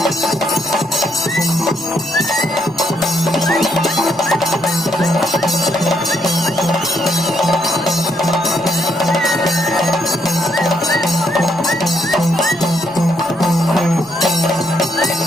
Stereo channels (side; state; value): right; noise; rumble, 29 dB below the sound